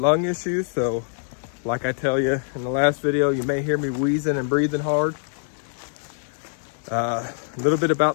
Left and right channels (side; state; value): right; silent; digital silence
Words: issues, so like I tell you in the last video, you may hear me wheezing and breathing hard. A little bit